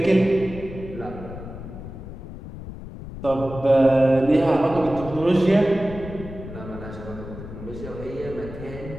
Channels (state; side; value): noise; left; rumble, 12 dB below the sound